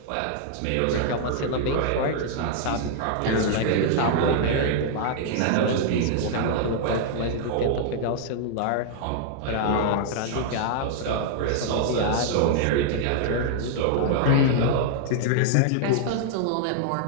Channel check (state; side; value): different; both; correlation -0.01